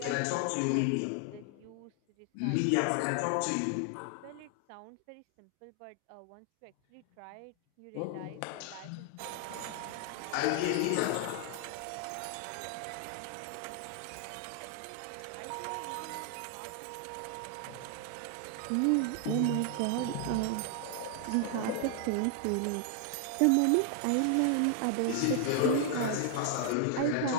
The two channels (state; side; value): different; both; correlation 0.00